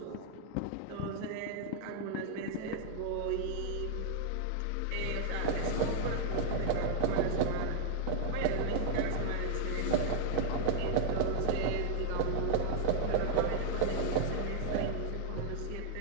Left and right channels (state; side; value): different; both; correlation 0.00